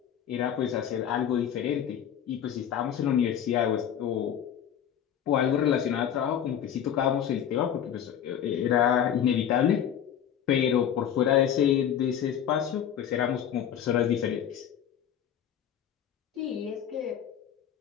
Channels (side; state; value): right; quieter; 9.4 dB